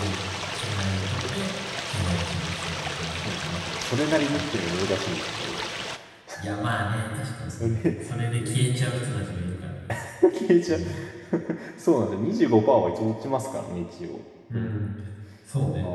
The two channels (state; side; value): identical; both; correlation 1.00